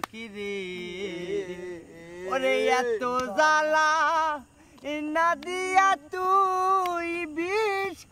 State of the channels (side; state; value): both; identical; correlation 1.00